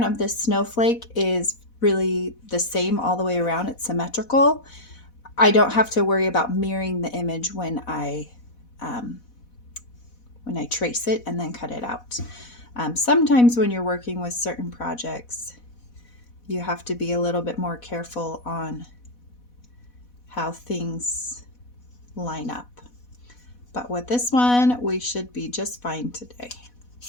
of this snowflake is really the same all the way around, it's symmetrical, I don't have to worry about mirroring the image when I trace it and then cut it out. Sometimes when you're working with certain projects, you have to be a little bit more careful on how things line up. But with this one, we should be just fine today.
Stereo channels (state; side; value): late; right; 4.1 ms